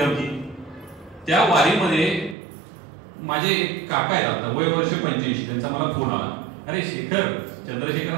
त्या वारीमध्ये माझे एक काका आहेत, आता वय वर्ष 85, त्यांचा मला फोन आला. अरे शेखर, चंद्रशेखर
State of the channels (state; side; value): drops out; left; at 2.4 s